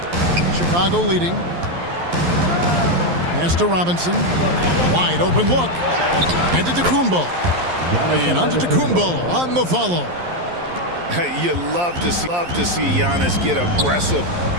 Chicago leading. Pass to Robinson. Wide open look. And to Tacumbo. And on to Tacumbo on the follow. You love to see Giannis get aggressive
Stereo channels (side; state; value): left; late; 11 ms